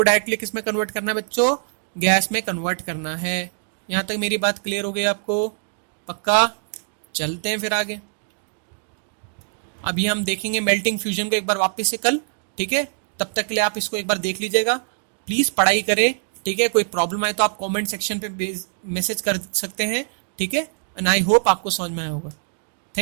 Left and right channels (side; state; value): left; silent; digital silence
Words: डायरेक्टली किस में कन्वर्ट करना है बच्चों? गैस में कन्वर्ट करना है। यहां तक मेरी बात क्लियर हो गई आपको? पक्का? चलते हैं फिर आगे। अभी हम देखेंगे मेल्टिंग फ्यूजन को एक बार वापस से कल, ठीक है? तब तक के लिए आप इसको एक बार देख लीजिएगा। प्लीज पढ़ाई करें, ठीक है? कोई प्रॉब्लम आए तो आप कमेंट सेक्शन पे मैसेज कर सकते हैं, ठीक है? एंड आई होप आपको समझ में आया होगा।